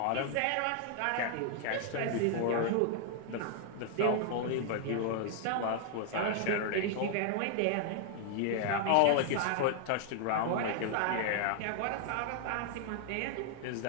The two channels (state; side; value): different; both; correlation 0.00